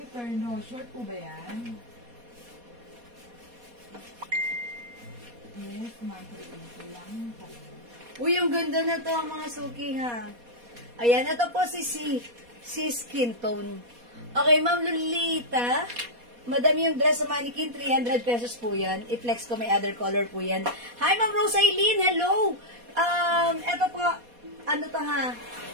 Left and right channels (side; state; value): left; late; 4.2 ms